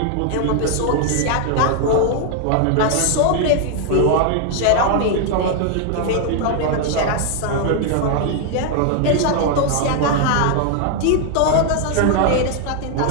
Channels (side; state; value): both; different; correlation 0.00